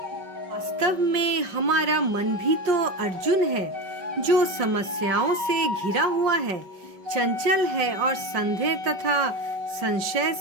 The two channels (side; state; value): left; late; 5.2 ms